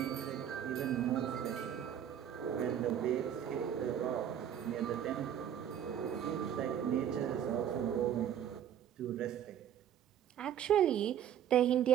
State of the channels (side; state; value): left; quieter; 9.7 dB